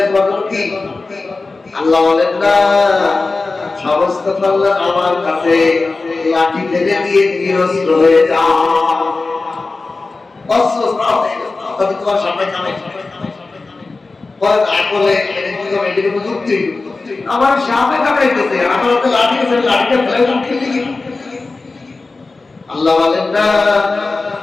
তোমার কি আল্লাহ বলেন না সমস্ত কল্যাণ আমার কাছে লাঠি ফেলে দিয়ে নিরস্ত্র হয়ে যা অস্ত্র তবে তোমার সামনে কামে আমার সামনে কাটাইতেছে আমার হাতে লাঠি আছে লাঠিটা ফেলে খেলে কি আল্লাহ বলেন না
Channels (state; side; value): quieter; right; 3.7 dB